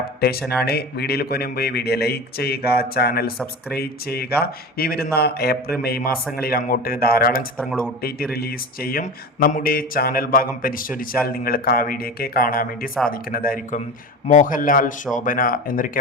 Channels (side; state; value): both; normal; correlation 0.29